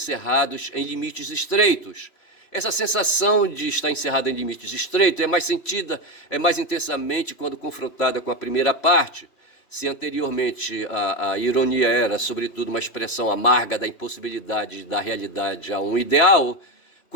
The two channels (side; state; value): right; late; 3.0 ms